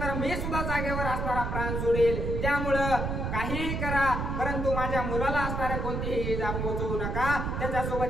तर मी सुद्धा जागेवर असणारा प्राण सोडेल. त्यामुळं काहीही करा परंतु माझ्या मुलाला असणाऱ्या कोणतीही इजा पोहोचवू नका,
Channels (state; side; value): noise; right; rumble, 2 dB below the sound